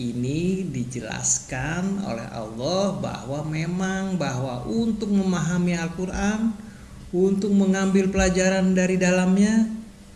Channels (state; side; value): identical; both; correlation 1.00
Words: dijelaskan oleh Allah bahwa untuk memahami Al-Quran, untuk mengambil pelajaran dari dalamnya,